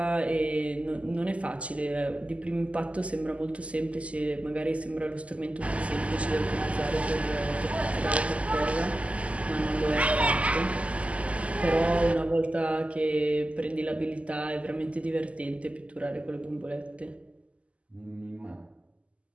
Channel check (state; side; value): late; left; 0.064 ms